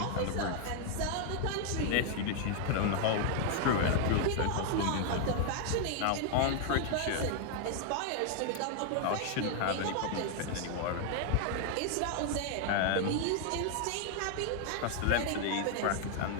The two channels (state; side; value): different; both; correlation 0.00